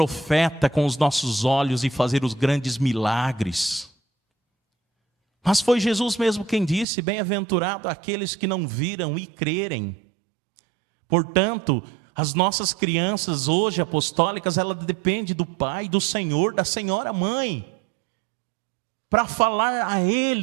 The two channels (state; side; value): drops out; left; at 6.9 s